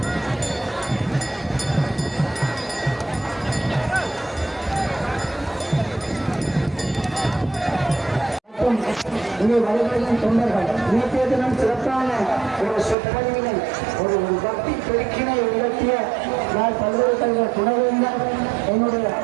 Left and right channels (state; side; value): drops out; left; at 13.0 s